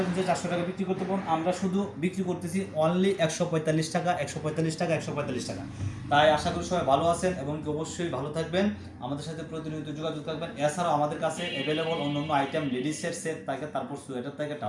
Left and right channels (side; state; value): both; identical; correlation 1.00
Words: টাকা বিক্রি করতে পারেন, আমরা শুধু বিক্রি করতেছি অনলি 145 টাকা। তাই আশা করি সবাই ভালো আছেন, এবং অবশ্যই ভালো থাকবেন, আমাদের সাথে প্রতিনিয়ত যোগাযোগ থাকবেন। এছাড়াও আমাদের কাছে অ্যাভেলেবল অন্যান্য আইটেম, লেডিসের সেট থাকে, তারপর সোয়েটার থাকে,